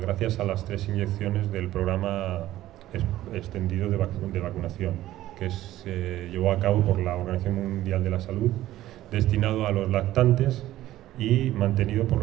gracias a las 3 inyecciones del programa extendido de vacunación que se llevó a cabo por la Organización Mundial de la Salud, destinado a los lactantes y mantenido por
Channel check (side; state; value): left; quieter; 14.6 dB